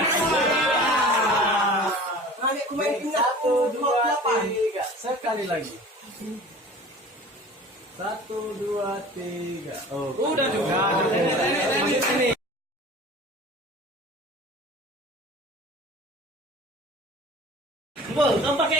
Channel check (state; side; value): normal; both; correlation 0.41